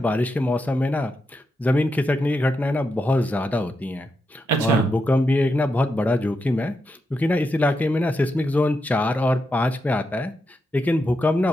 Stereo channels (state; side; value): normal; both; correlation 0.85